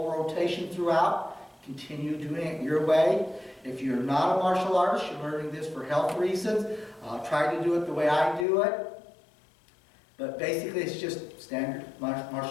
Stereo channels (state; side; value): drops out; right; at 8.5 s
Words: rotation throughout, continue doing it your way. If you're not a martial artist, you're learning this for health reasons, try to do it the way I do it. But basically it's just standard